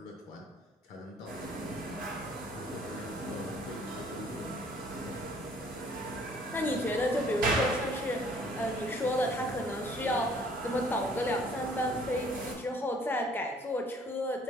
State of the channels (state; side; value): normal; both; correlation 0.58